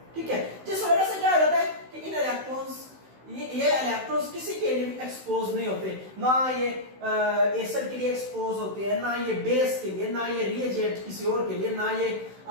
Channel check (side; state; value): left; late; 16 ms